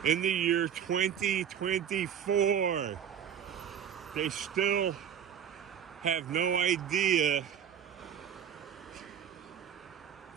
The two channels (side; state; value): left; quieter; 8.8 dB